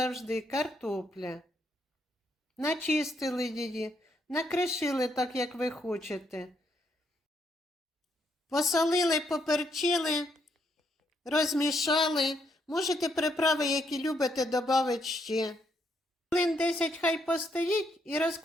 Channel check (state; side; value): normal; both; correlation 0.75